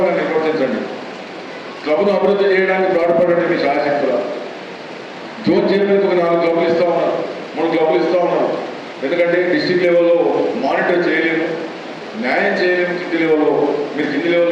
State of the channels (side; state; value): both; identical; correlation 1.00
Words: నిర్వర్తించండి. క్లబ్ను అభివృద్ధి చేయడానికి పాటుపడండి మీ శాయశక్తుల. జోన్ చైర్మన్కి ఒక 4 క్లబ్లు ఇస్తూ ఉన్నారు, 3 క్లబ్లు ఇస్తూ ఉన్నారు. ఎందుకంటే డిస్ట్రిక్ట్ లెవెల్లో మానిటర్ చేయలేము, న్యాయం చేయలేము. కింది లెవెల్లో మీరు కింది